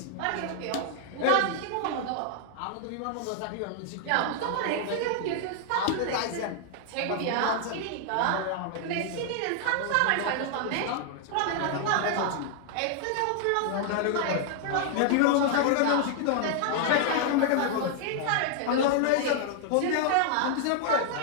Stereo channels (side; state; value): both; different; correlation 0.00